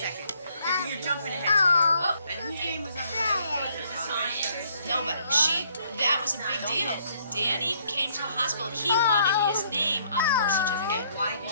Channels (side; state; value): both; inverted; correlation -0.66